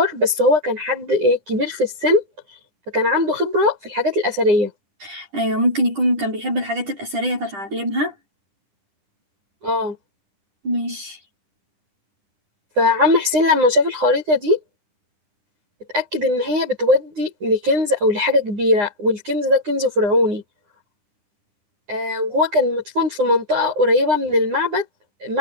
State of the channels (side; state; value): left; late; 9.8 ms